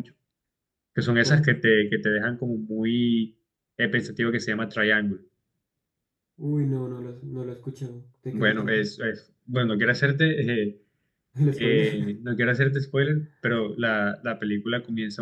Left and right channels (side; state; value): both; identical; correlation 1.00